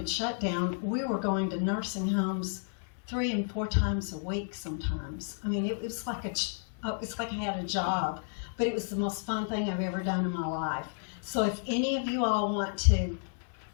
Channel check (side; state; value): right; silent; 57 dB below the other